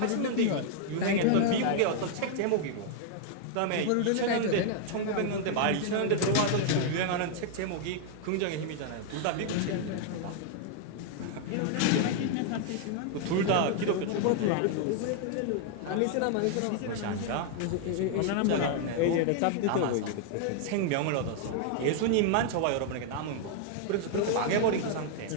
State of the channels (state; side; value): different; both; correlation 0.00